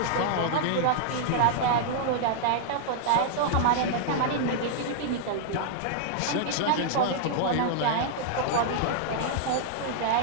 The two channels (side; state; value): both; different; correlation -0.01